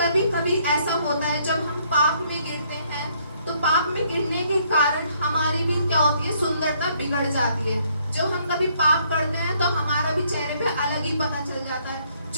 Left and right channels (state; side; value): inverted; both; correlation -0.67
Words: कभी ऐसा होता है जब हम पाप में गिरते हैं तो पाप में गिरने के कारण हमारी भी क्या होती है, सुंदरता बिगड़ जाती है। जब हम कभी पाप करते हैं तो हमारा भी चेहरे पे अलग ही पता चल जाता है।